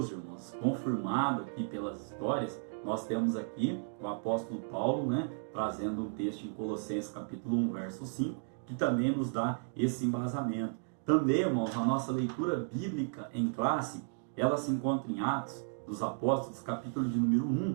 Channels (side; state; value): left; silent; digital silence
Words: irmãos, confirmado aqui pelas histórias, nós temos aqui o apóstolo Paulo, trazendo um texto em Colossenses capítulo 1, verso 5, que também nos dá esse embasamento. Também, irmãos, a nossa leitura bíblica em classe, ela se encontra em Atos dos Apóstolos, capítulo de número